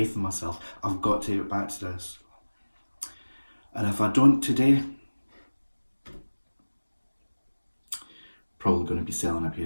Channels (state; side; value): inverted; both; correlation -1.00